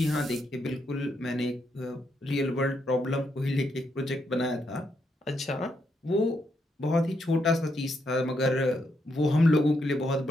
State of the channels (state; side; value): normal; both; correlation 0.79